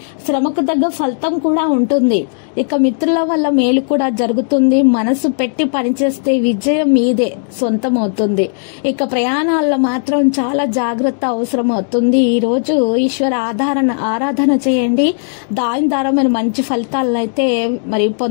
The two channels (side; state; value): right; silent; digital silence